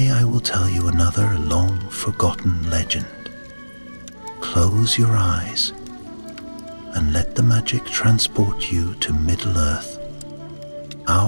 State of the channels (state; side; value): inverted; both; correlation -1.00